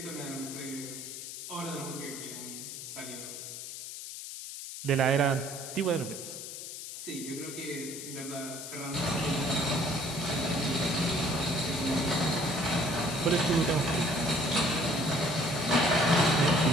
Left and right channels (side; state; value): left; noise; hiss, 9 dB below the sound